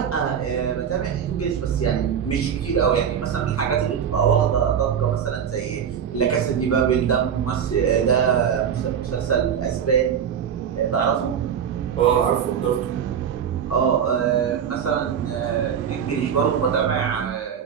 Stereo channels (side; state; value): left; quieter; 8.1 dB